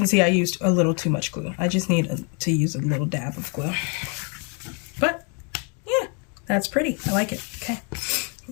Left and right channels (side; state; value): right; quieter; 36.7 dB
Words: see I used a little too much glue. I just need to use a little dab of glue. But, yeah, that's pretty. I like it. Okay,